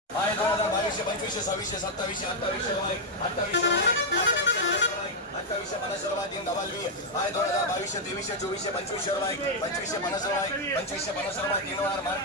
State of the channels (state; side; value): normal; both; correlation 0.00